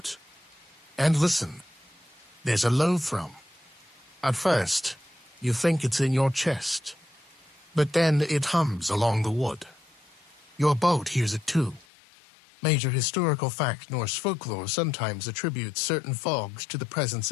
And listen. There's a low thrum. At first, you think it's in your chest. But then it hums along the wood. Your boat hears it too. Major historical fact: Norse folklore sometimes attributes certain fogs to the presence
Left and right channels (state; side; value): drops out; right; at 11.9 s